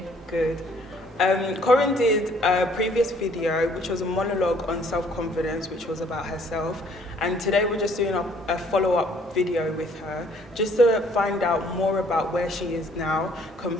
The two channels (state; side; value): normal; both; correlation 0.61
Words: Good. Corrine did a previous video, which was a monologue on self-confidence, which was about herself. And today we're just doing a follow-up video with her, just to find out more about where she is now